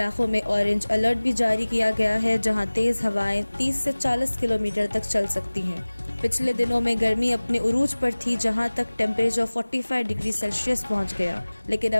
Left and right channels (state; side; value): inverted; both; correlation -1.00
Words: में ऑरेंज अलर्ट भी जारी किया गया है, जहां तेज हवाएं 30 से 40 किलोमीटर तक चल सकती हैं। पिछले दिनों में गर्मी अपने उरूज पर थी, जहां तक टेम्परेचर 45 डिग्री सेल्सियस पहुंच गया, लेकिन